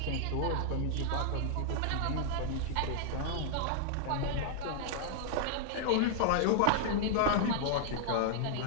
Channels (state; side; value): different; both; correlation -0.01